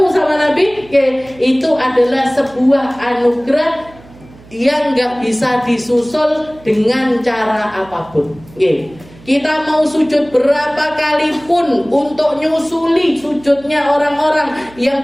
sama Nabi, itu adalah sebuah anugerah yang nggak bisa disusul dengan cara apapun. Kita mau sujud berapa kali pun untuk nyusuli sujudnya orang-orang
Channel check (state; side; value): noise; right; hum, 23 dB below the sound